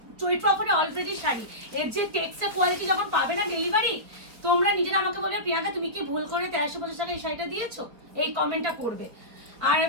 চৈত্র অফারে অলরেডি শাড়ি, এর যে টেক্সচার কোয়ালিটি যখন পাবে না ডেলিভারি, তোমরা নিজেরা আমাকে বলবে প্রিয়াঙ্কা তুমি কি ভুল করে 1350 টাকা এই শাড়িটা দিয়েছো, এই কমেন্টটা করবে। আর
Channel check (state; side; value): late; left; 4.2 ms